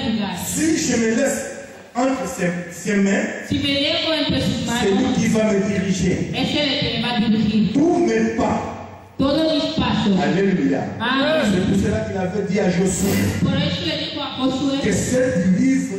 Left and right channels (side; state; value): both; identical; correlation 1.00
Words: lugar. Si je me laisse entre ses mains, Si me dejo entre sus c'est lui manos, qui va me diriger. es el que me va a dirigir. Tous mes pas. Todos mis pasos. Alléluia. Amén. C'est pour cela qu'il avait dit à Josué Por eso le dijo a que Josué ce livre